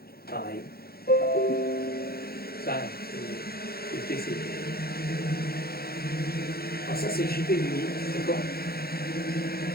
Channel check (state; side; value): late; right; 0.45 ms